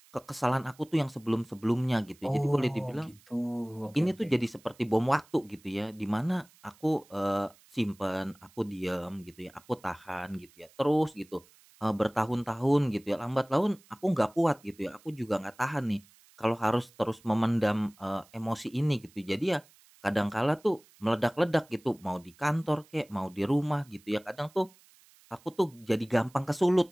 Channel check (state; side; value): noise; right; hiss, 28 dB below the sound